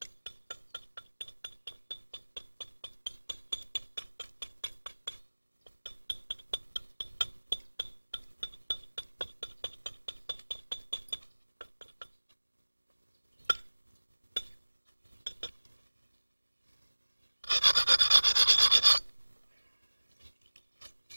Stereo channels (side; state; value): both; inverted; correlation -1.00